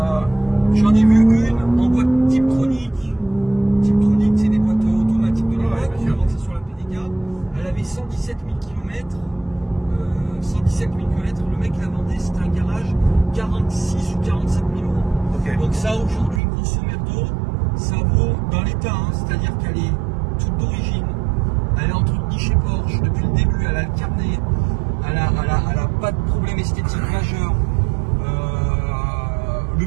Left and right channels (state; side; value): drops out; left; at 16.4 s